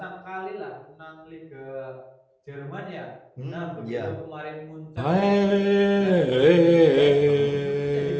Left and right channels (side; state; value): both; identical; correlation 1.00